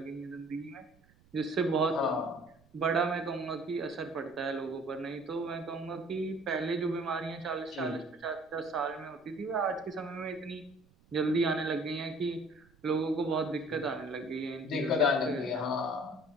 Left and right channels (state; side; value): noise; right; rumble, 30 dB below the sound